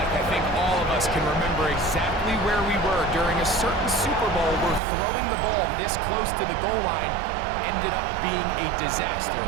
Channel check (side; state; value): left; drops out; at 4.8 s